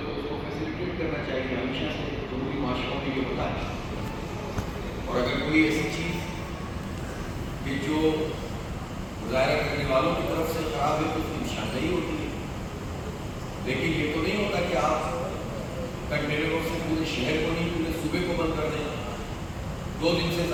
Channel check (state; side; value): identical; both; correlation 1.00